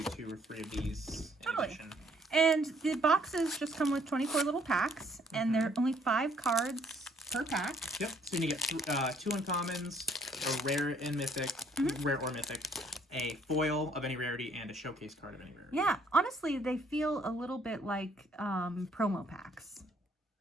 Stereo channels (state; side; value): normal; both; correlation 0.65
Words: do 2 or 3 of these in addition. And the boxes just come with 24 little packs, and there are only 5 cards per pack. Yep. So you get 2 uncommons, a rare and mythic, rare or mythic, a foil of any rarity, and a showcase card of any rarity. Yeah, honestly, they feel a little bit like promo packs.